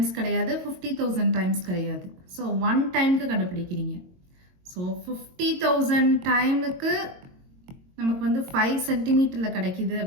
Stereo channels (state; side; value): late; left; 22 ms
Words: கிடையாது, 50,000 டைம்ஸ் கிடையாது. ஸோ ஒன் டைமுக்கு கண்டுபிடிக்கிறீங்க. ஸோ 50,000 டைமுக்கு நமக்கு வந்து 5 சென்டிமீட்டரில் கிடைக்கிது